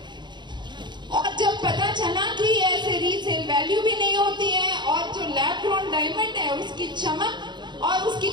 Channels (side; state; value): left; late; 0.22 ms